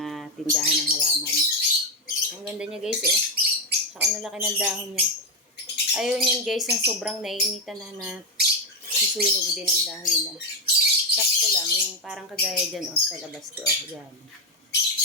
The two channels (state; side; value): normal; both; correlation 0.06